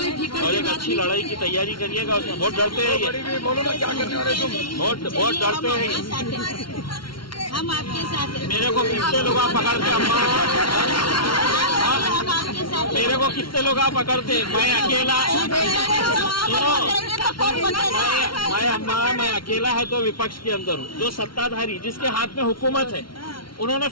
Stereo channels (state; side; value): late; right; 0.73 ms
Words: और एक अच्छी लड़ाई की तैयारी करिएगा उसमें। बहुत डरते हैं ये, बहुत डरते हैं ये। हम आपके साथ हैं। मेरे को कितने लोग आप पकड़ते अम्मा, मेरे को कितने लोग आप पकड़ते, मैं अकेला मैं अकेला है तो विपक्ष के अंदर हूँ। जो सत्ताधारी जिसके हाथ में हुकूमत है, उन्होंने